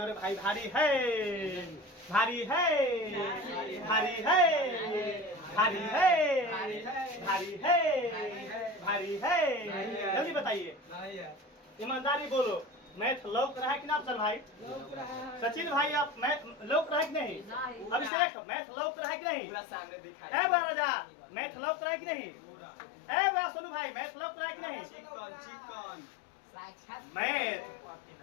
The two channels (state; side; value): drops out; right; at 18.1 s